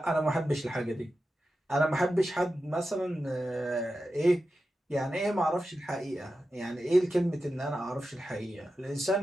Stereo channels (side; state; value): both; normal; correlation 0.91